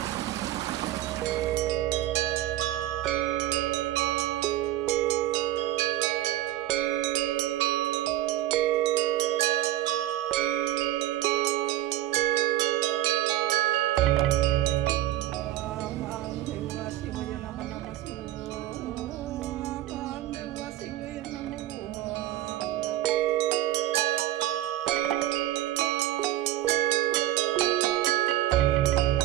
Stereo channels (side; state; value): left; quieter; 14.4 dB